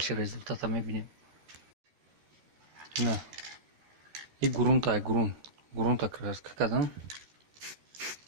результата мы видим. Да. И грунта, грунт. Грунта краска, когда?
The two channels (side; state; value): left; late; 13 ms